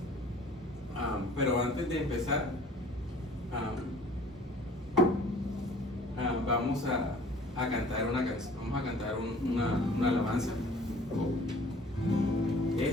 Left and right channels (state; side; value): normal; both; correlation 0.51